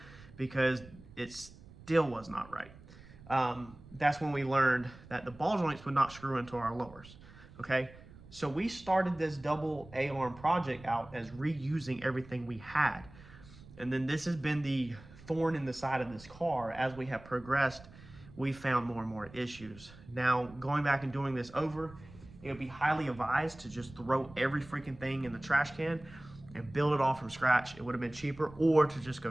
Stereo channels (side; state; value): right; noise; rumble, 20 dB below the sound